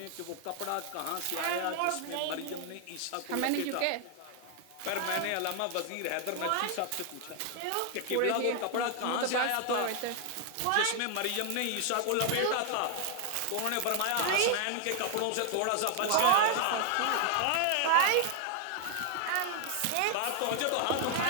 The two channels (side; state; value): both; different; correlation 0.00